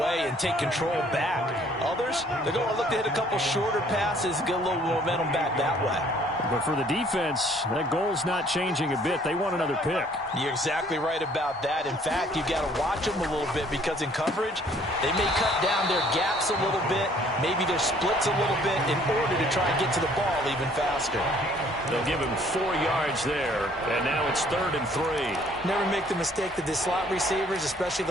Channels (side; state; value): both; normal; correlation 0.59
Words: and take control back. Others, they're going to look to hit a couple shorter passes, get a little momentum back that way. But for the defense, that goal's not changing a bit. They want another pick. You're exactly right about that. In fact, you've got to watch them a little bit because in coverage, they may cut down their gaps a little bit, maybe their splits a little bit in order to try and get to the ball even faster. They'll give him 4 yards there, and now it's 3rd and 3. Never make the mistake that the slot receivers, especially